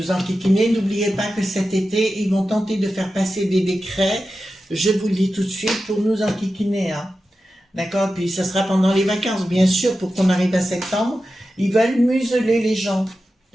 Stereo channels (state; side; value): normal; both; correlation 0.92